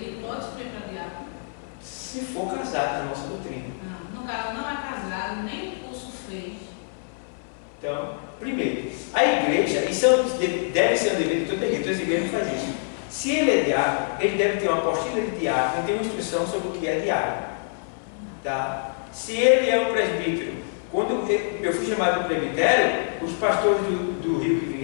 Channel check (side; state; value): right; silent; 61 dB below the other